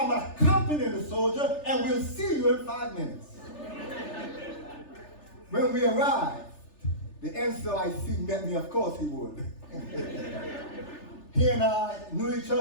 accompanying the soldier, and we'll see you in 5 minutes. When we arrived, the NCOIC met me, of course he would. He and I knew each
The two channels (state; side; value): late; right; 3.4 ms